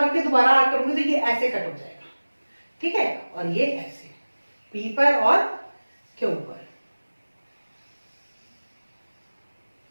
रख के दोबारा आग करूंगी तो ये ऐसे कट हो जाएगा, ठीक है, और ये ऐसे P पर और Q पर।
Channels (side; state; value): both; inverted; correlation -1.00